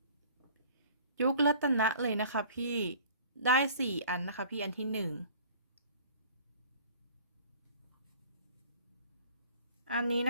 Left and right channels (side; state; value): both; inverted; correlation -0.49